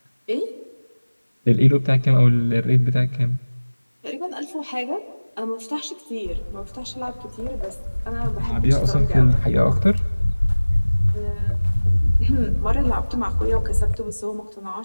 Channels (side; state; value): both; inverted; correlation -1.00